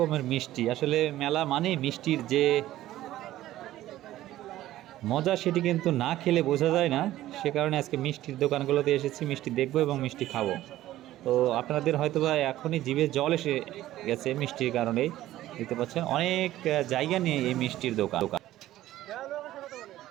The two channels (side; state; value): left; quieter; 14.5 dB